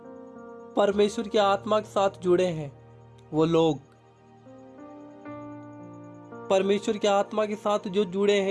परमेश्वर की आत्मा के साथ जुड़े हैं, वो लोग परमेश्वर की आत्मा के साथ जो जुड़े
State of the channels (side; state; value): both; identical; correlation 1.00